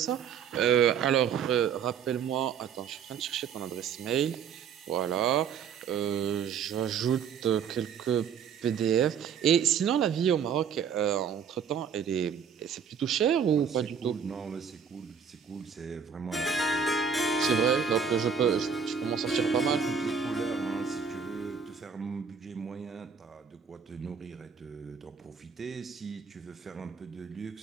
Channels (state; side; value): quieter; left; 7.0 dB